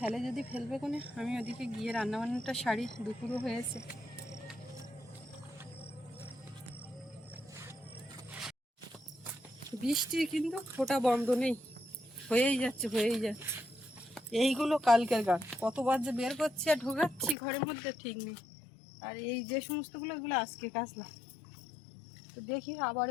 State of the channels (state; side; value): drops out; right; at 17.4 s